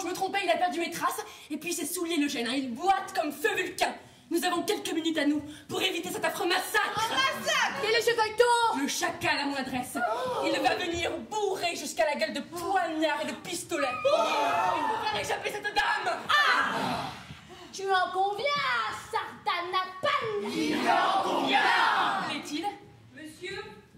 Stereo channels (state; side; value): identical; both; correlation 1.00